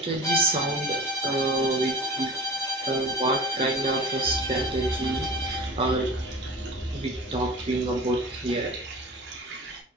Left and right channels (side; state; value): both; normal; correlation 0.36